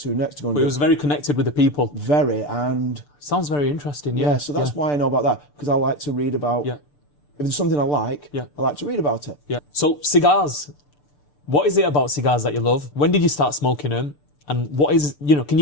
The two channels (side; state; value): right; late; 6.8 ms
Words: next. To go and But he was very connected with the people. Very, and... Sounds very interesting, Yeah, so that's why I know about that, because I like to read about... Yeah. If there's something I like, I like to read about it. Yeah. So cigars. What is it about cigars that you love? When did you start smoking them? And what is, can